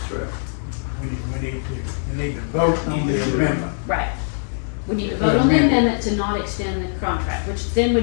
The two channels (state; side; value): silent; right; digital silence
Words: right. You need to vote on the amendment. Right. We need to vote on the amendment to not extend the contract, which then